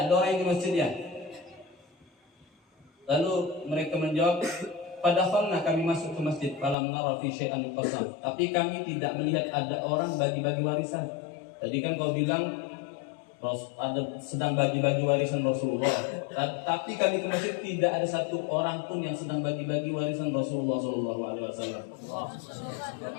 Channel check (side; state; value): right; drops out; at 6.8 s